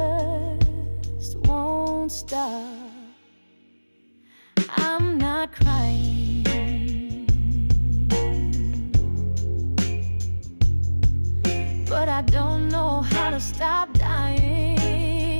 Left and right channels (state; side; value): inverted; both; correlation -1.00